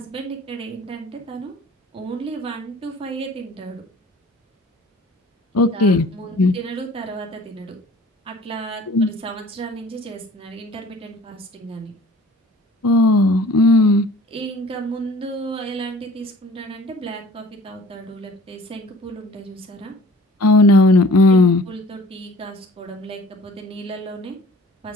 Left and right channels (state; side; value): normal; both; correlation 0.49